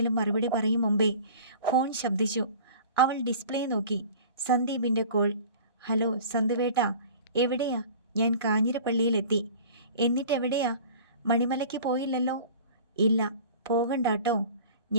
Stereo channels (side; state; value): both; inverted; correlation -0.43